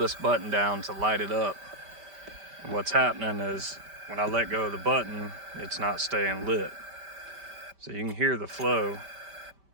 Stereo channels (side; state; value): left; late; 5.1 ms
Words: button down to light it up. And what's happening is when I let go of the button, it's not staying lit. So you can hear the flow